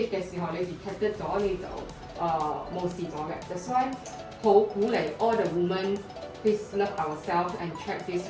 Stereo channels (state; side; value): identical; both; correlation 1.00